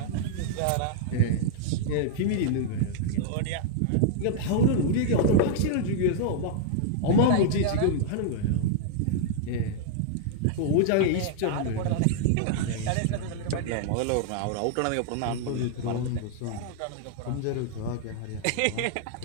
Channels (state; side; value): different; both; correlation -0.01